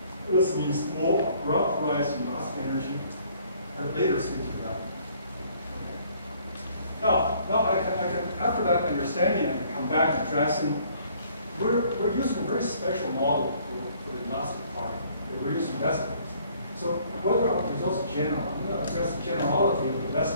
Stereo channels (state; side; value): inverted; both; correlation -0.60